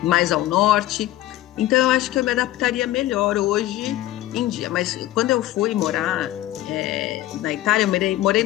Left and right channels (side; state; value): right; quieter; 15.1 dB